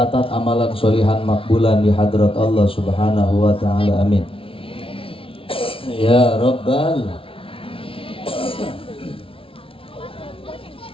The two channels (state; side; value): late; right; 0.26 ms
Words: amalan solihan makbulan di hadrat Allah Subhanahu wa taala. Amin. Ya Rabbal.